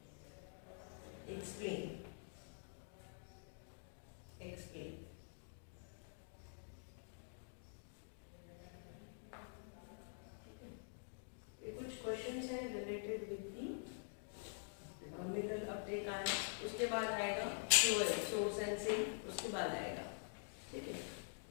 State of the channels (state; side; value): silent; right; digital silence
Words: Explain. ये कुछ क्वेश्चंस हैं related with the mineral Uptake आया, उसके बाद आएगा सोर्स एंड सिंक, उसके बाद आएगा, ठीक है।